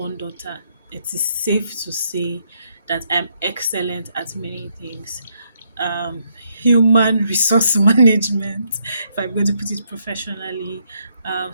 daughter, it is safe to say that I'm excellent at many things. Um, Human resource management, if I'm going to put it professionally,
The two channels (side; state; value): both; inverted; correlation -0.75